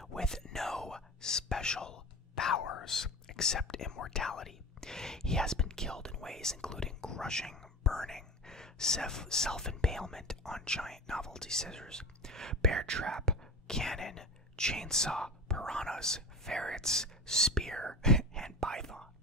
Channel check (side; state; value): both; normal; correlation 0.30